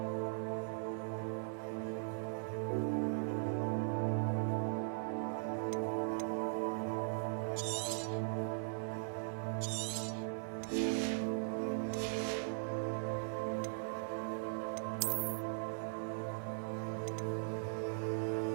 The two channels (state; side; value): silent; left; 51 dB below the other